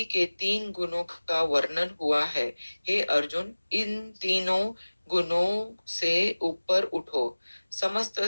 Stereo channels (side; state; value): both; inverted; correlation -1.00